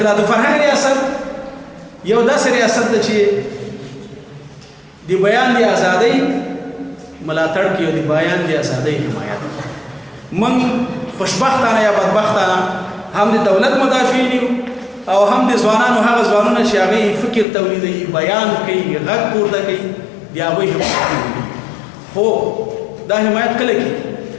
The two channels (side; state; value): right; drops out; at 17.4 s